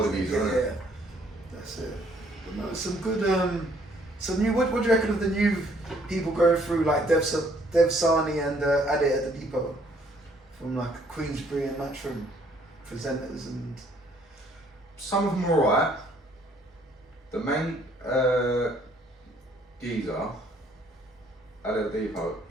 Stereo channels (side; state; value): both; normal; correlation 0.64